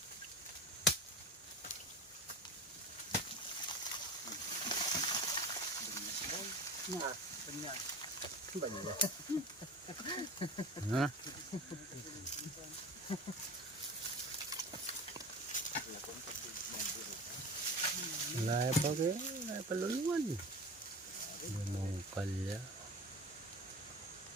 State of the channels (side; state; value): both; normal; correlation 0.34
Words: Ha? Laya pa kayo, laya pa luluwan. Lumungkal ya.